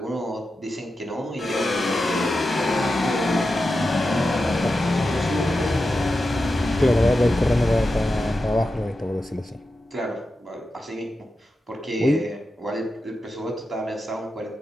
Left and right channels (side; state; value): both; normal; correlation 0.90